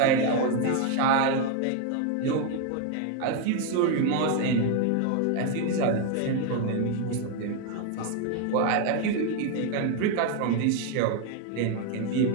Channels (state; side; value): different; both; correlation 0.01